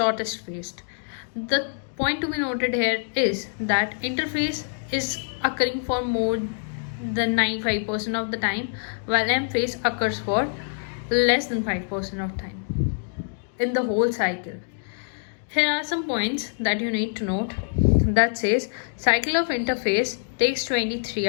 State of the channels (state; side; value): silent; right; digital silence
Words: phase. The point to be noted here is that interphase is occurring for more than 95% of the time, while M phase occurs for less than 5% of time in the whole cycle. Here are some points that you need to note. That says cycle of interphase takes 23